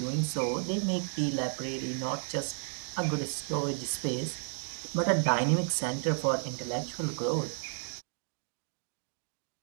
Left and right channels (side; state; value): left; silent; digital silence